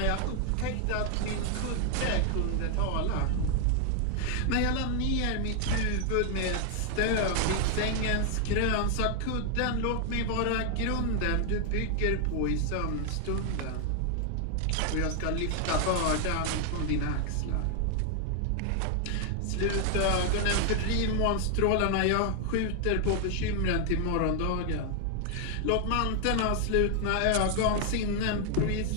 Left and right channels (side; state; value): both; different; correlation 0.00